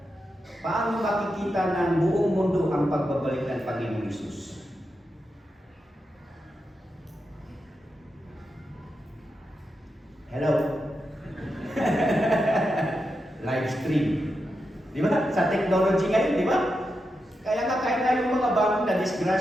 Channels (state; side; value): normal; both; correlation 0.87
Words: Paano makikita ng buong mundo ang pagbabalik ng Panginoong Hesus? Hello? Live stream. Di ba? Sa technology ngayon, di ba? Kaya nga kahit na yung mga bagong na